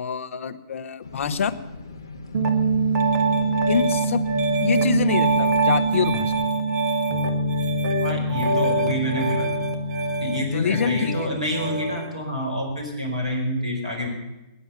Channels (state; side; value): inverted; both; correlation -0.57